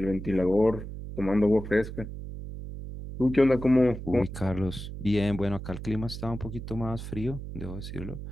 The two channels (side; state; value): right; noise; hum, 9 dB below the sound